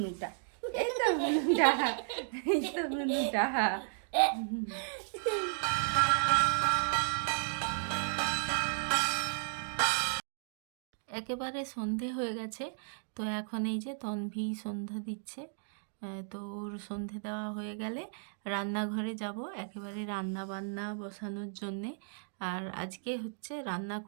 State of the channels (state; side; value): silent; left; digital silence